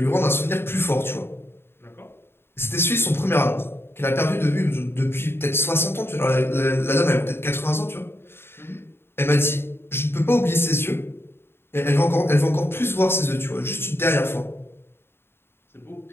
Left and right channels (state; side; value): late; right; 0.11 ms